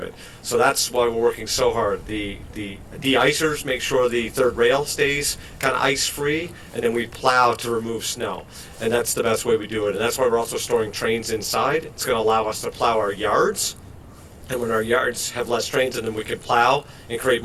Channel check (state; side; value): identical; both; correlation 1.00